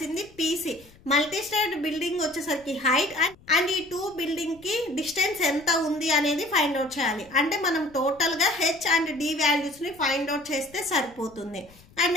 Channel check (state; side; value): noise; left; rumble, 26 dB below the sound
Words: పీసీ మల్టీ స్టోర్డ్ బిల్డింగ్ వచ్చేసరికి హైట్ అండ్ ఈ 2 బిల్డింగ్ కి డిస్టెన్స్ ఎంత ఉంది అనేది ఫైండ్ అవుట్ చేయాలి. అంటే మనం టోటల్ గా హెచ్ అండ్ డి వాల్యూస్ ని ఫైండ్ అవుట్ చేస్తే సరిపోతుంది. అండ్